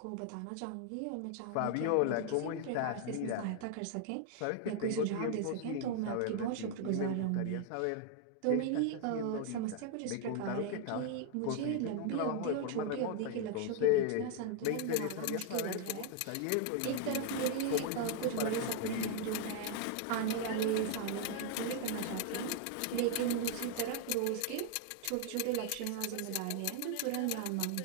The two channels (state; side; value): different; both; correlation 0.00